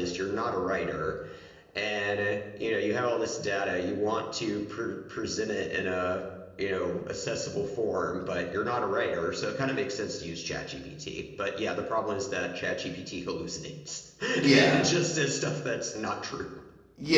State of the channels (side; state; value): both; identical; correlation 1.00